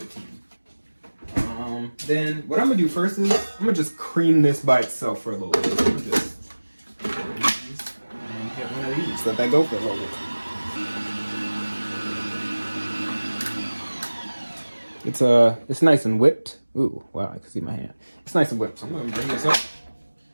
Then what I'm gonna do first is I'm gonna just cream this by itself for a little bit. I'm gonna just and get one of these. Let that go for a little bit. It's nice and whipped. Ooh, wow, I can see my hand. It's nice and whipped, so I'm gonna bring this up.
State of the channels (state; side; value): inverted; both; correlation -1.00